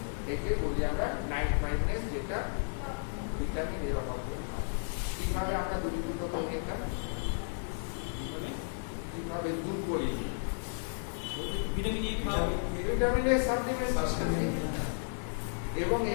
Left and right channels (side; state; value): right; silent; digital silence